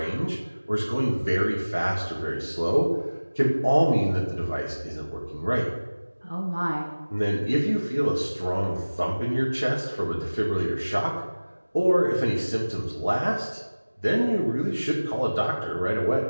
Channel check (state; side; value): inverted; both; correlation -1.00